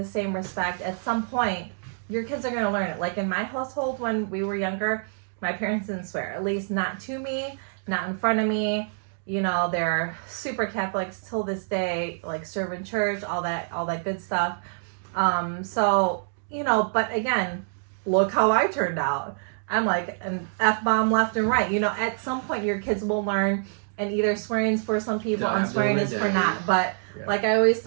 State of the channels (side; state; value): left; silent; digital silence